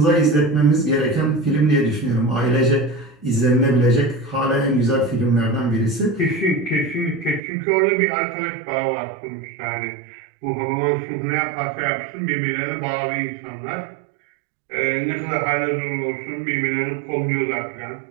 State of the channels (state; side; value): drops out; left; at 7.4 s